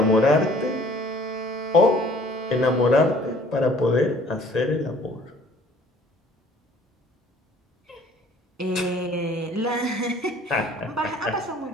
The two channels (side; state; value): both; normal; correlation 0.54